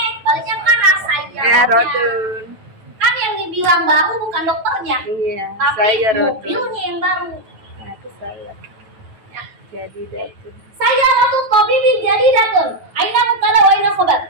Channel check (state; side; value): late; left; 9.2 ms